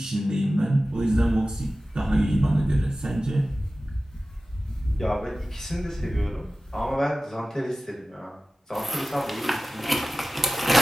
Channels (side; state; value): both; normal; correlation 0.96